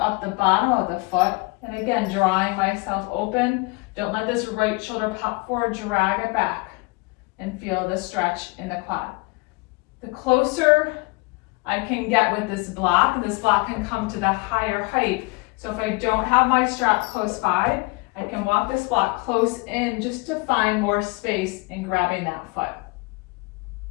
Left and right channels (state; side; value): quieter; right; 27.3 dB